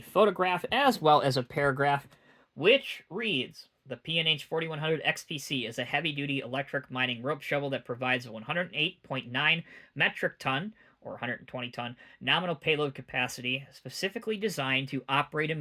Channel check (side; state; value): both; identical; correlation 1.00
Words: as well as a paragraph, which reads, the P&H 4100 XPC is a heavy-duty electric mining rope shovel that provides a 108.9 metric ton, or 120 ton, nominal payload capacity, specifically designed to operate in